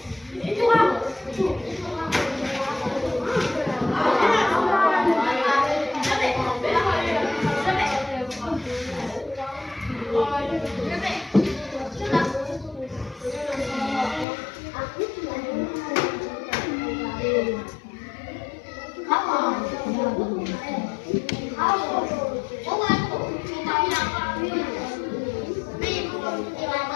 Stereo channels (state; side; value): drops out; right; at 14.2 s